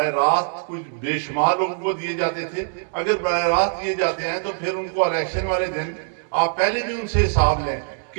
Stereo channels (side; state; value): left; silent; 60 dB below the other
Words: راست کچھ بے شمار لوگوں کو دیے جاتے تھے۔ اگر براہ راست دیے جاتے ہیں تو پھر ان کو الیکشن والے دن آپ پہلے بھی ان سے حساب لیں